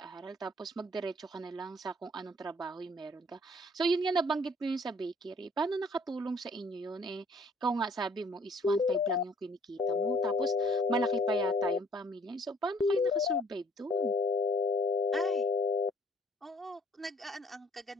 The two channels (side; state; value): both; normal; correlation 0.58